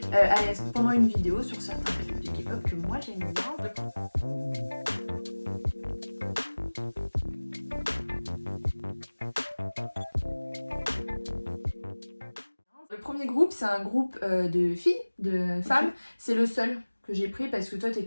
pendant une vidéo sur certains clips de K-pop que moi j'aime bien. Le premier groupe, c'est un groupe de filles, de femmes. Okay. C'est le seul que j'ai pris parce que toi,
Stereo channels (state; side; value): inverted; both; correlation -1.00